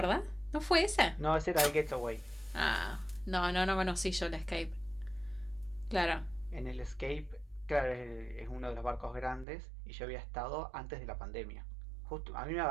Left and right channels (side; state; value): left; drops out; at 9.5 s